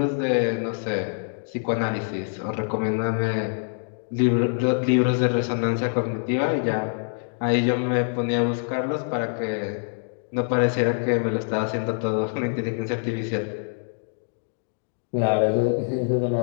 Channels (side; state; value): right; silent; digital silence